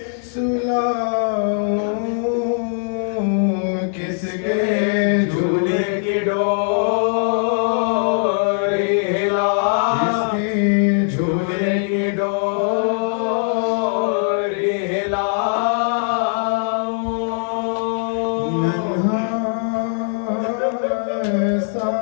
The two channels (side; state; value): right; silent; 66 dB below the other